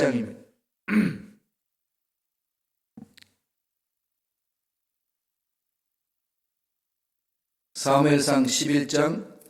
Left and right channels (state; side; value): identical; both; correlation 1.00